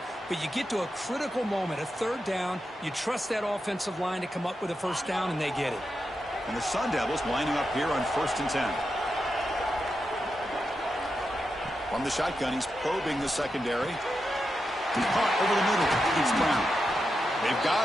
but you get to a critical moment, a 3rd down. You trust that offensive line to come up with a first down, and they get it. And the Sun Devils lining up here on 1st and 10. From the shotgun, he's probing the secondary. Caught over the middle. It's Brown. They've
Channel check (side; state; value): both; normal; correlation 0.88